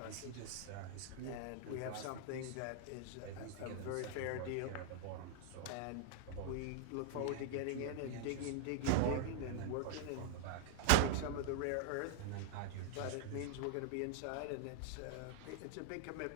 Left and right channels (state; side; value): different; both; correlation 0.00